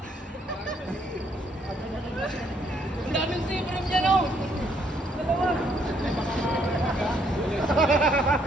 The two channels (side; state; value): both; normal; correlation 0.70